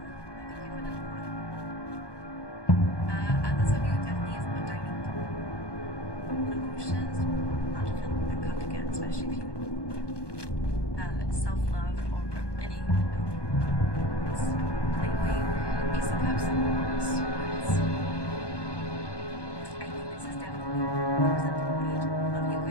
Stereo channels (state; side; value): late; right; 1.2 ms